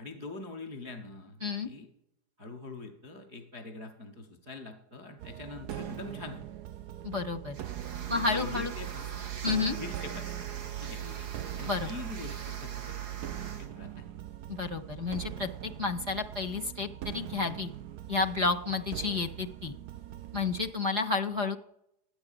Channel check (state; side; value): late; left; 4.8 ms